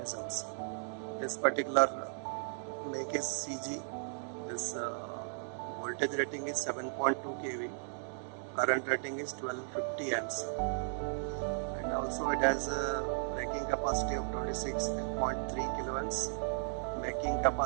This particular make is CG. This voltage rating is 7.2 kV. Current rating is 1250 amps. And also it has a breaking capacity of 26.3 kilowatts. Making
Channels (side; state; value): left; silent; digital silence